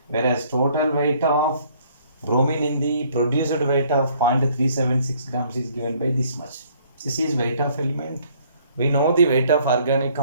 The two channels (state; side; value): inverted; both; correlation -0.62